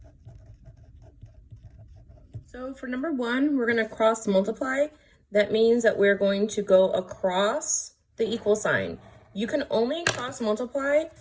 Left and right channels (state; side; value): identical; both; correlation 1.00